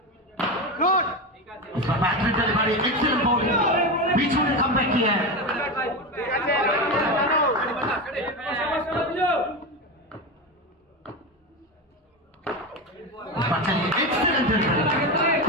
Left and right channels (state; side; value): normal; both; correlation 0.19